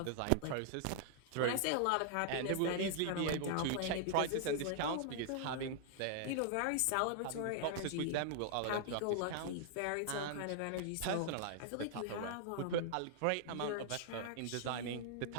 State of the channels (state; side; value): different; both; correlation -0.01